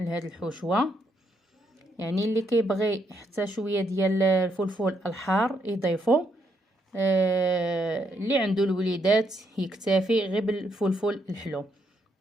الحشوه. يعني اللي كيبغي حتى شويه ديال الفلفل الحار يضيفو، اللي عنده الوليدات يكتفي غير بالفلفل الحلو.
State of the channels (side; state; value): both; normal; correlation 0.75